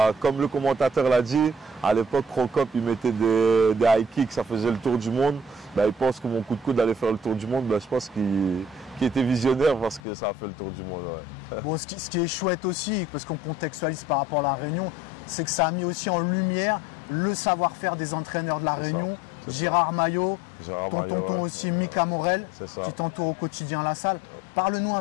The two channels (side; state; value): right; drops out; at 10.0 s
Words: comme le commentateur l'a dit, à l'époque, Crocop, il mettait des high kicks, ça faisait le tour du monde. Il pense que mon coup de coude allait faire le tour du monde. Je pense qu'il était visionnaire parce que ça a fait le tour du monde. Ouais. Bon, ce qui est chouette aussi, parce qu'on contextualise par rapport à la Réunion, c'est que ça a mis aussi en lumière le savoir-faire des entraîneurs de la Réunion. Gérard Maillot, ton tonton aussi, Mika Morel, qui t'entoure au quotidien à la salle. Parle-nous